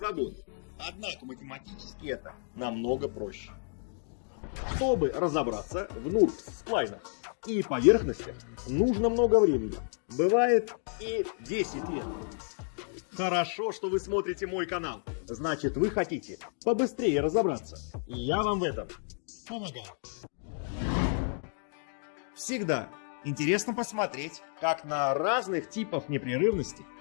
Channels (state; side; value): silent; right; 57 dB below the other